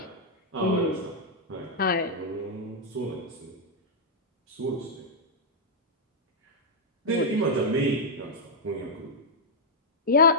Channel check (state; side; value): normal; both; correlation -0.07